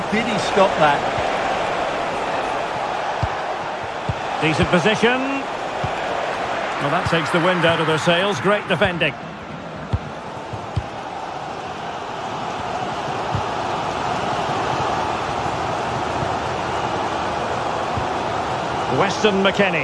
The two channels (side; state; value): both; identical; correlation 1.00